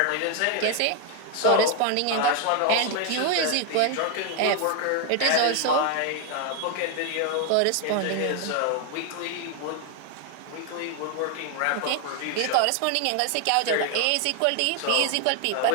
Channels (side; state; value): both; different; correlation 0.01